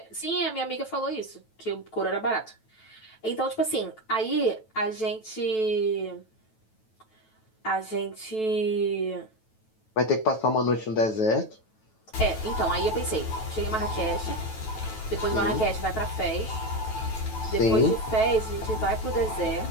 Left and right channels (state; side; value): late; right; 9.2 ms